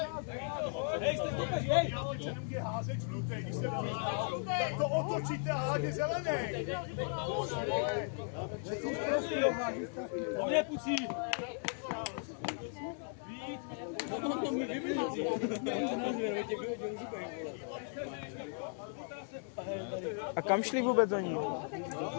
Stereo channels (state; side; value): silent; right; 53 dB below the other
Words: Nemůže házet žlutej, když se tak to otočíte a hádě zelený. On je pucí. A kam šli vůbec oni?